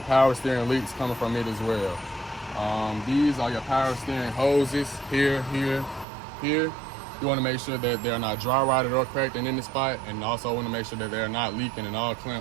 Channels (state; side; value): drops out; left; at 6.1 s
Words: steering leaks coming from it as well. These are your power steering hoses here. You want to make sure that they're not dry rotted or cracked in any spot, and also want to make sure that they're not leaking and all